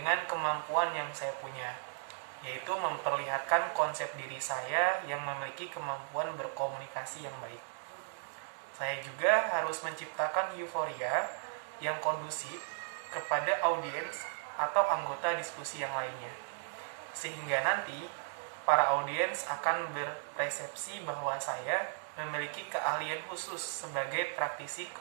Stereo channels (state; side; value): silent; left; digital silence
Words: kemampuan yang saya punya, yaitu memperlihatkan konsep diri saya yang memiliki kemampuan berkomunikasi yang baik. Saya juga harus menciptakan euforia yang kondusif kepada audiens atau anggota diskusi yang lainnya, sehingga nanti para audiens akan berpersepsi bahwa saya memiliki keahlian khusus sebagai praktisi